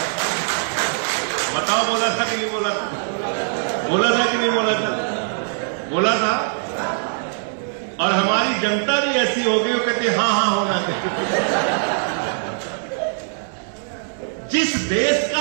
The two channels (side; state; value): left; silent; digital silence